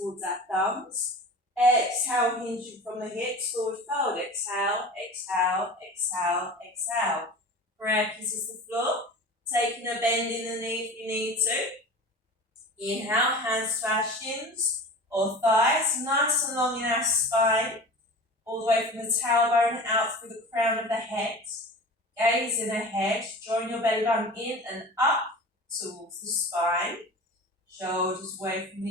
our thumbs. Exhale, hinging from the hips, forward fold. Exhale, exhale, exhale, exhale. Prayer kisses the floor. Taking a bend in the knee if you need to. Inhale, hands to our shins or thighs, nice and long in our spine. All the way from the tailbone out through the crown of the head. Gaze in ahead, drawing your belly button in and up towards the spine, shoulders away from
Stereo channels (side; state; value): both; normal; correlation 0.36